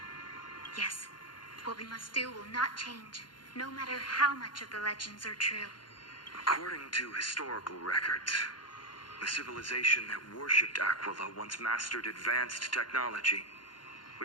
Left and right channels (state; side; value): late; right; 0.71 ms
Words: Yes, what we must do will not change, no matter how much of the legends are true. According to historical records, the civilization that worshipped Aquila once mastered advanced technology,